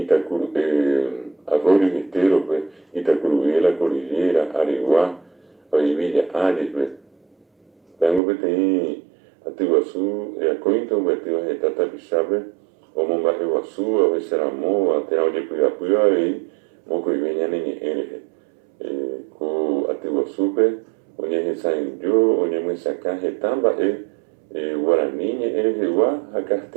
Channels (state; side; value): drops out; left; at 8.2 s